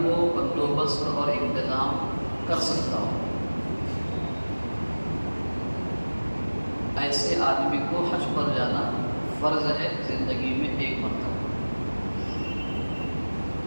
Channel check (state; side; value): inverted; both; correlation -1.00